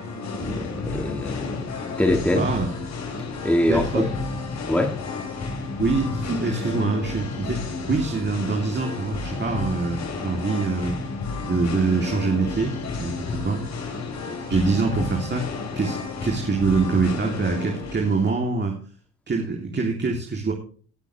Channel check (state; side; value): normal; both; correlation 0.63